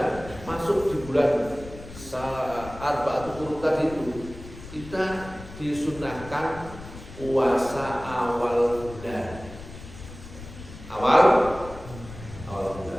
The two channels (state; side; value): noise; left; rumble, 15 dB below the sound